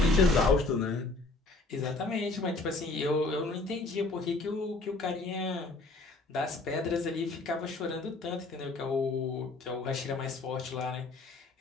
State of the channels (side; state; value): right; quieter; 3.3 dB